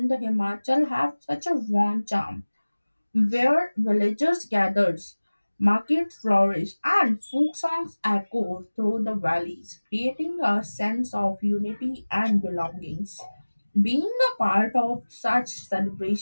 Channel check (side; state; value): both; inverted; correlation -1.00